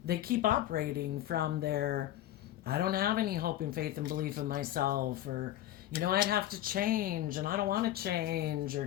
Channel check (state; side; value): quieter; right; 13.3 dB